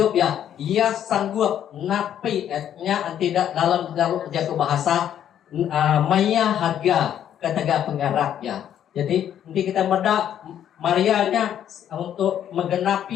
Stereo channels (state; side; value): quieter; right; 10.1 dB